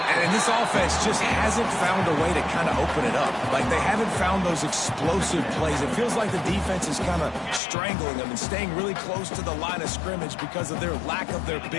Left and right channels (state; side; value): drops out; right; at 7.6 s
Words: And this offense just hasn't found a way to kind of open it up. Like, they haven't found those explosive plays. It feels like the defense is kind of strangling them and staying really close to the line of scrimmage because of their lack of their